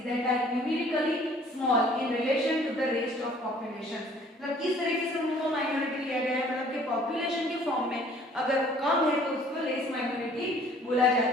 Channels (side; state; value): both; normal; correlation 0.55